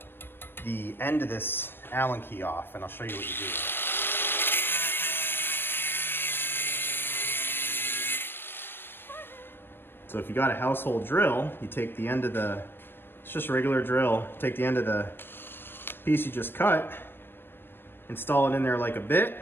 the end of this Allen key off, and I'll show you what you do. So if you got a household drill, you take the end of the, it's just a regular drill, take the end of the piece you just cut, install it in there like a bit,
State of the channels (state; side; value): late; right; 0.10 ms